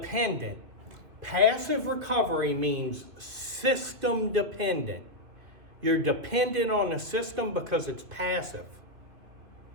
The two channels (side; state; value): left; late; 2.8 ms